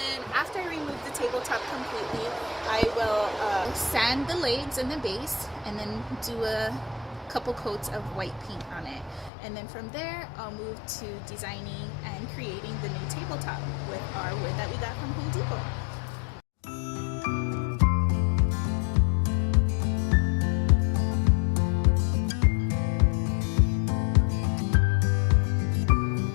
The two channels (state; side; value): drops out; right; at 9.3 s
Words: after I remove the tabletop completely, I will sand the legs and the base, and then do a couple coats of white paint on it. And then from there, I'll move to designing and creating the new tabletop with our wood that we got from Home Depot.